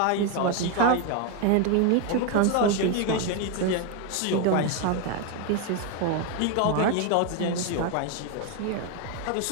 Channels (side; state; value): both; different; correlation 0.01